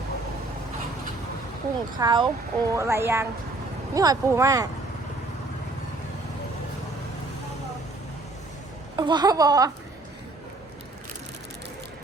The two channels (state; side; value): quieter; left; 3.0 dB